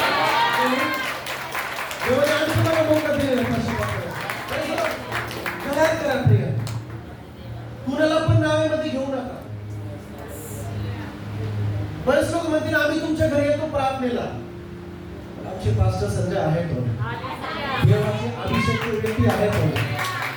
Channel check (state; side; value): identical; both; correlation 1.00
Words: देवाने आणखी मला मौका दिलेला करार करा. प्रिय, कुणाला पण नावेमध्ये घेऊ नका. बरेच लोक म्हणतील आम्ही तुमच्या घरी येतो प्रार्थनेला. आमचे पास्टर संजय आहेत. देवाची अभिषेक व्यक्ती आहेत